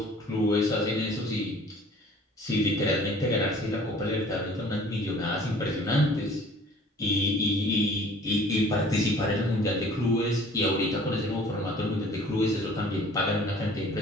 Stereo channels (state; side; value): normal; both; correlation 0.51